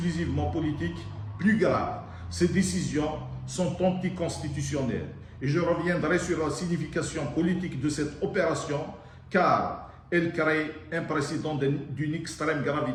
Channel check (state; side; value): identical; both; correlation 1.00